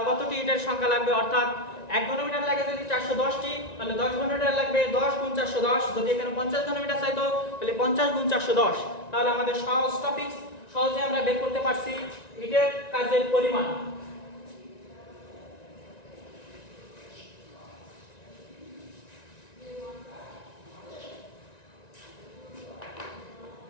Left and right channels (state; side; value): late; right; 1.9 ms